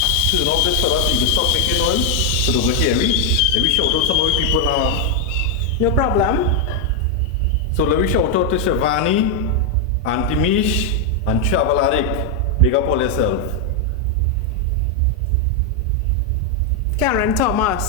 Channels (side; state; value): both; normal; correlation 0.02